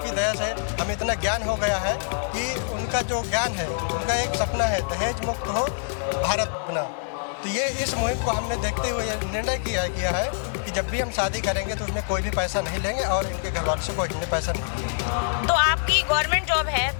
दया से हमें इतना ज्ञान हो गया है कि उनका जो ज्ञान है, उनका एक सपना है दहेज मुक्त हो भारत बना। तो ये इस मुहिम को हमने देखते हुए निर्णय किया है कि जब भी हम शादी करेंगे तो उसमें कोई भी पैसा नहीं लेंगे और इनके घर वालों से कोई हमने पैसा नहीं लेंगे। तो आपकी गवर्नमेंट जॉब है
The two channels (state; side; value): silent; right; 59 dB below the other